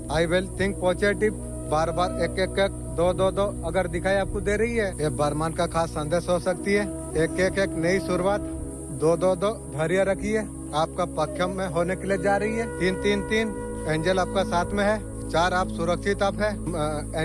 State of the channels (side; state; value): both; identical; correlation 1.00